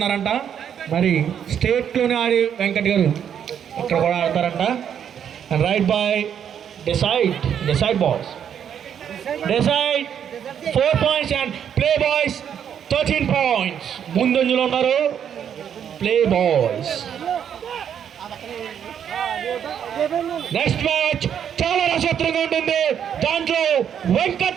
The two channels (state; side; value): quieter; left; 8.7 dB